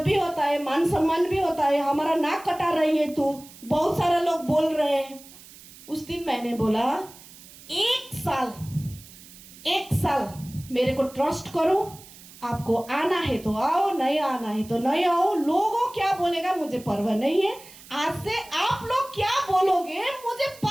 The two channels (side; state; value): right; noise; hiss, 20 dB below the sound